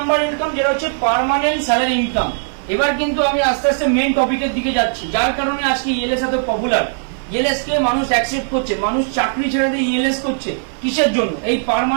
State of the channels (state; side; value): silent; left; 57 dB below the other